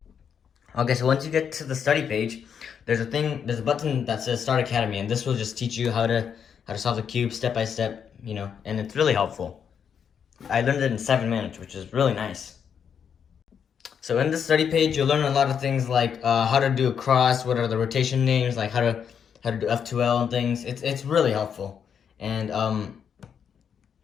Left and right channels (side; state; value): right; quieter; 7.5 dB